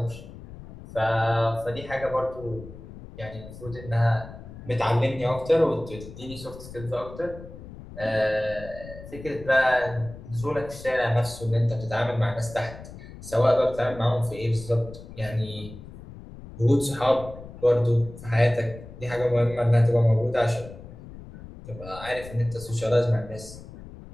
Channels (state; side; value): noise; left; rumble, 15 dB below the sound